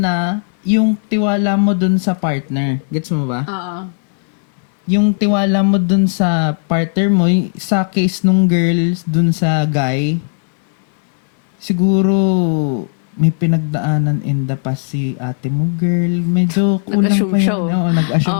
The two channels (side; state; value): right; silent; 69 dB below the other